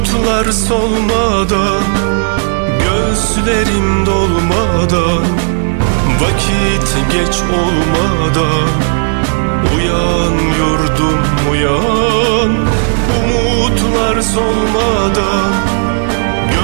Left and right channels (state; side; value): silent; left; 58 dB below the other